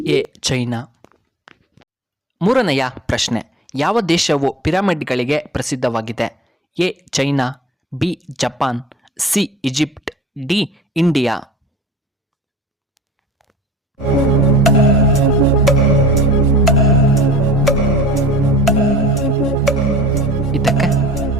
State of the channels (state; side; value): normal; both; correlation 0.42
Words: ಎ ಚೈನಾ. ಮೂರನೆಯ ಪ್ರಶ್ನೆ, ಯಾವ ದೇಶವು ಪಿರಮಿಡ್ಗಳಿಗೆ ಪ್ರಸಿದ್ಧವಾಗಿದೆ? A China, B Japan, C Egypt, D India. ಇದಕ್ಕೆ